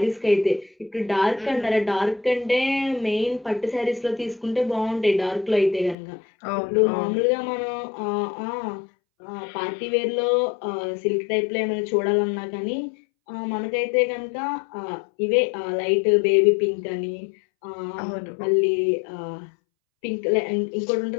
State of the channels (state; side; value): drops out; right; at 6.0 s